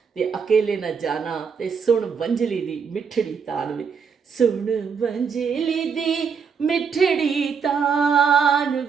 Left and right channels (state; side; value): quieter; left; 6.2 dB